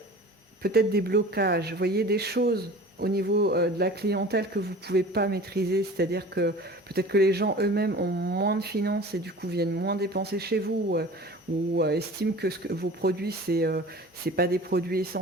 peut-être des blocages, vous voyez, des choses au niveau de la clientèle que vous ne pouvez pas maîtriser, c'est-à-dire que peut-être que les gens eux-mêmes ont moins de finances et du coup viennent moins dépenser chez vous ou estiment que, vos produits, c'est pas des produits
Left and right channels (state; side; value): normal; both; correlation 0.40